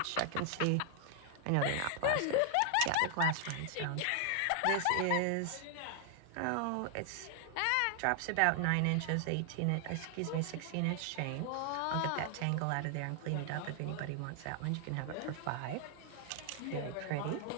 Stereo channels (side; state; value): both; different; correlation 0.00